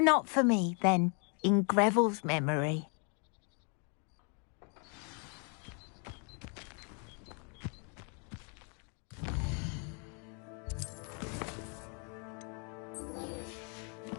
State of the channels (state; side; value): quieter; right; 37.4 dB